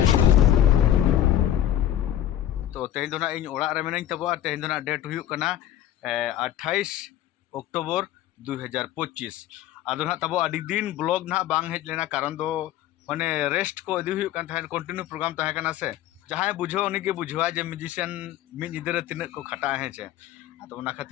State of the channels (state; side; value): quieter; right; 12.1 dB